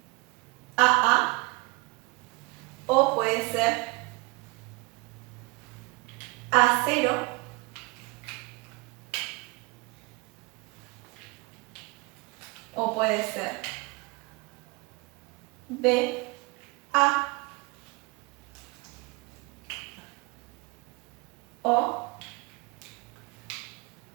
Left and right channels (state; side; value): quieter; left; 25.2 dB